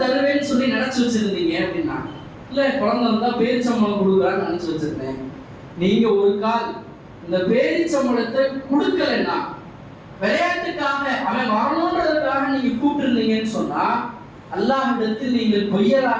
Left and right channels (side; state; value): both; identical; correlation 1.00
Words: தருவேன்னு சொல்லி நினைச்சு வச்சிருந்தீங்க அப்படின்னா, இல்ல குழந்தை வந்தா பேரிச்சம்பழம் கொடுக்குறான்னு நினைச்சு வச்சிருந்தேன். நீங்க ஒரு கால் இந்த பேரிச்சம்பழத்தை கொடுக்கலன்னா, விளையாட்டுக்காக அவன் வரணுன்றதுக்காக நீங்க கூப்பிட்டுருந்தீங்கன்னு சொன்னா அல்லாஹ்விடத்தில் நீங்கள்